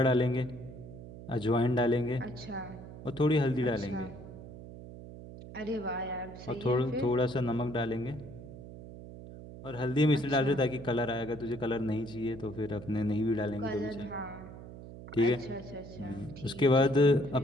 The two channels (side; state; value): right; noise; hum, 14 dB below the sound